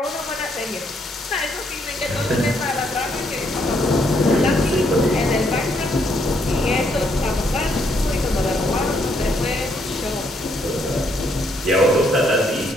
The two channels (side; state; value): both; normal; correlation 0.73